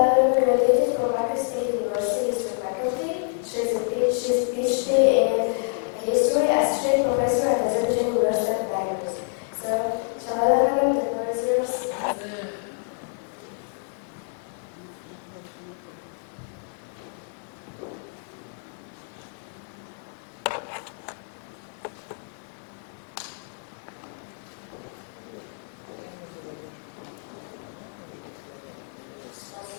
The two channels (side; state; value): right; silent; 60 dB below the other